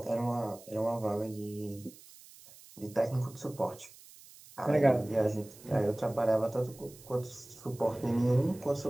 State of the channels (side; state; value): right; noise; hiss, 21 dB below the sound